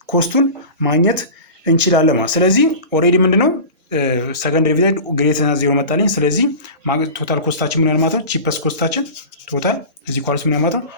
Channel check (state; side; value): inverted; both; correlation -0.33